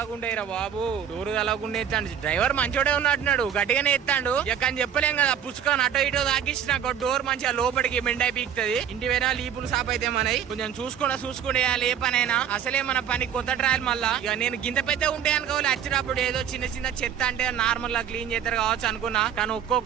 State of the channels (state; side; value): quieter; left; 8.9 dB